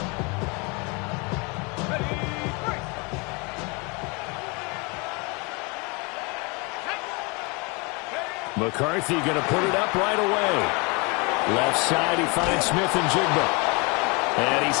McCarthy going to put it up right away. Left side, he finds Smith and Jigba. And he's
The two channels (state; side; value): quieter; right; 28.7 dB